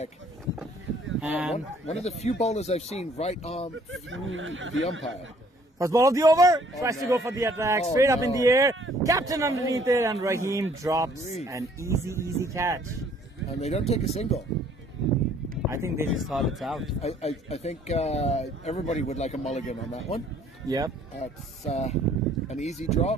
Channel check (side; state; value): both; normal; correlation 0.60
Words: And One of the few bowlers I've seen right arm through the umpire. first ball of the over. Tries to go for the attack. Oh, Straight up in no. the air. Captain underneath it. And Raheem drops an easy catch. And they don't take a single. I think they just thought it's out. I think everybody would like a mulligan on that one. Yep. It's an easy